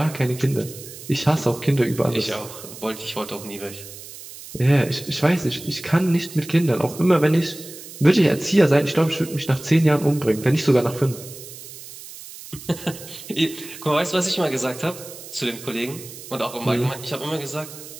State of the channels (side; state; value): right; noise; hiss, 15 dB below the sound